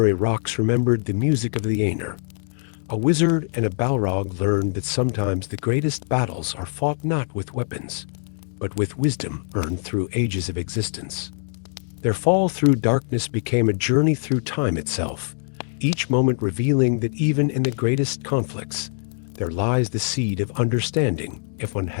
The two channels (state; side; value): silent; right; digital silence